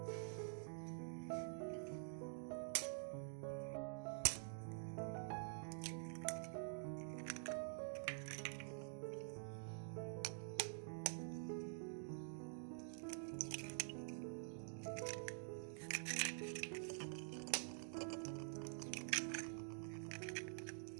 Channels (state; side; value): silent; left; digital silence